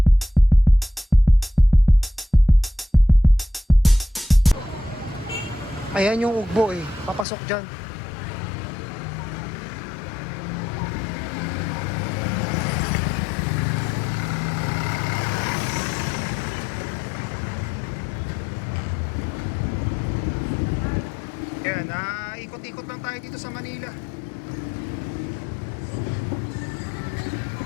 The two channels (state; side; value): drops out; right; at 7.2 s